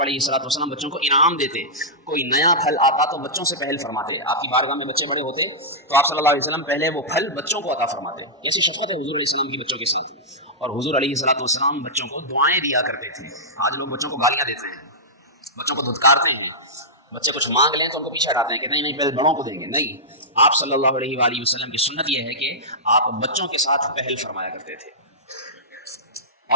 الصلوۃ والسلام بچوں کو انعام دیتے، کوئی نیا پھل آتا تو بچوں سے پہل فرماتے، آپ کی بارگاہ میں بچے بڑے ہوتے تو آپ صلی اللہ علیہ وسلم پہلے وہ پھل بچوں کو عطا فرماتے۔ کیسی شفقت ہے حضور علیہ السلام کی بچوں کے ساتھ، اور حضور علیہ الصلوۃ والسلام بچوں کو دعائیں دیا کرتے تھے۔ آج لوگ بچوں کو گالیاں دیتے ہیں، بچوں کو دھتکارتے ہیں، بچے کچھ مانگ لیں تو ان کو پیچھے ہٹاتے ہیں کہ نہیں پہلے بڑوں کو دیں گے۔ نہیں، آپ صلی اللہ علیہ وسلم کی سنت یہ ہے کہ آپ بچوں کے ساتھ پہل فرمایا کرتے تھے۔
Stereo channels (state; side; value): normal; both; correlation -0.13